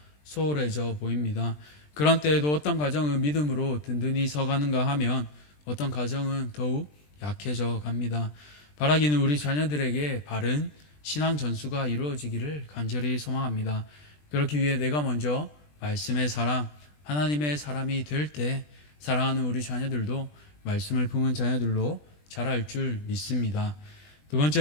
소홀해져 보입니다. 그런 때에도 어떤 가정은 믿음으로 든든히 서가는가 하면 어떤 가정은 더욱 약해져 갑니다. 바라기는 우리 자녀들에게 바른 신앙 전수가 이루어지기를 간절히 소망합니다. 그렇기 위해 내가 먼저 말씀의 사람, 하나님의 사람이 될 때 사랑하는 우리 자녀들도 말씀을 품은 자녀들로 자랄 줄 믿습니다. 두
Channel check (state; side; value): late; right; 20 ms